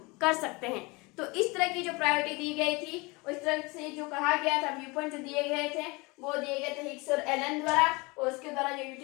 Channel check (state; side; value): quieter; right; 25.9 dB